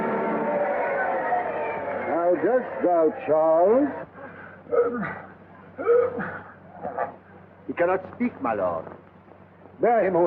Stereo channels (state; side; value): identical; both; correlation 1.00